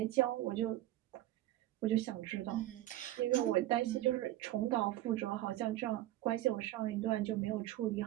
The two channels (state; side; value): quieter; left; 14.8 dB